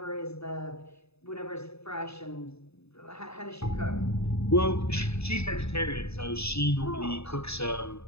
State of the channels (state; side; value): late; right; 0.79 ms